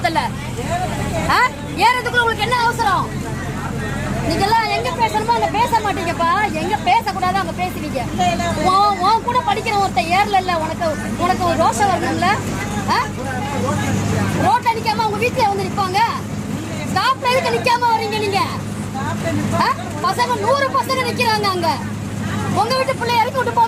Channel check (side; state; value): both; identical; correlation 1.00